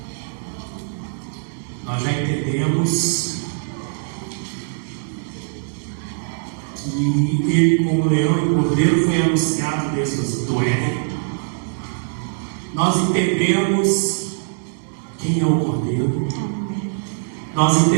Nós já entendemos que ele, como leão e cordeiro, foi anunciado desde o Éden. Nós entendemos quem é o cordeiro. Nós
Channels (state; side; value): silent; left; digital silence